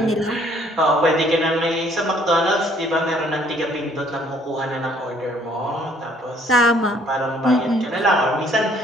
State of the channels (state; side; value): normal; both; correlation 0.62